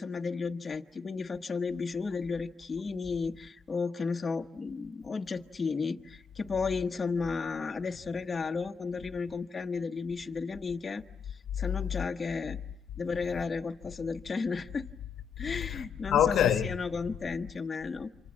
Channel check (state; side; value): quieter; right; 5.6 dB